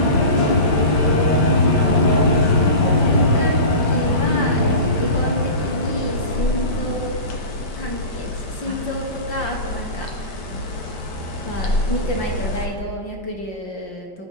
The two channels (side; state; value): right; late; 5.1 ms